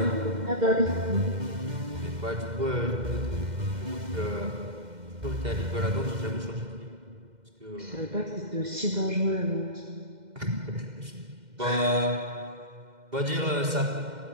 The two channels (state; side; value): late; left; 2.1 ms